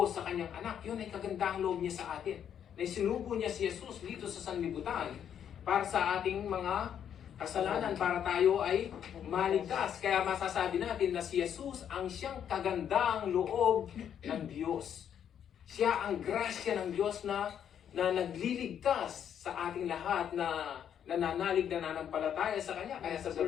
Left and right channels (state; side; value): quieter; right; 9.0 dB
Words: sa kanyang anak. Yun ay kagandahang loob niya sa atin. Na sinugo niya si Jesus dito sa sanlibutan para sa ating mga kasalanan, para tayo ay maligtas. Kaya masasabi natin na si Jesus ang siyang kagandahang loob ng Diyos. Siya ang grasya ng Diyos na nagliligtas sa ating lahat na nananalig na nanampalataya sa Kanya. Kaya sa